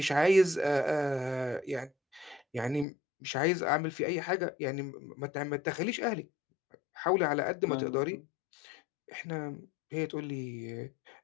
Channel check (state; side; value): drops out; right; at 2.9 s